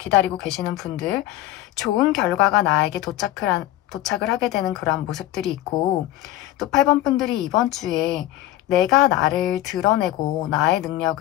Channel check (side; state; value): right; quieter; 14.9 dB